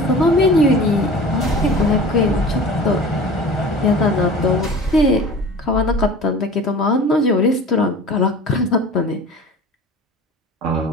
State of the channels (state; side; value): normal; both; correlation 0.39